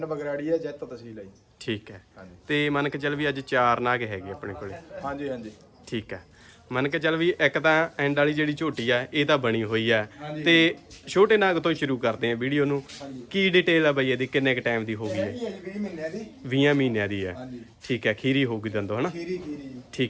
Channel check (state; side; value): identical; both; correlation 1.00